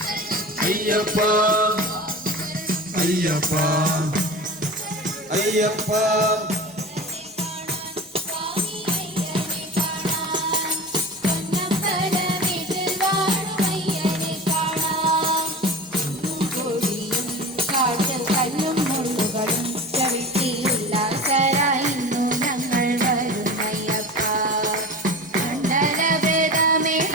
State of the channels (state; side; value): normal; both; correlation 0.34